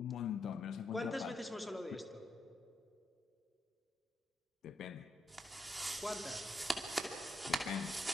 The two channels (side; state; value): both; normal; correlation 0.83